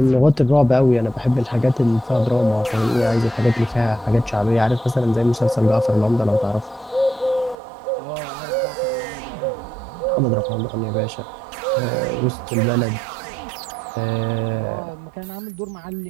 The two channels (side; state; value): left; drops out; at 7.6 s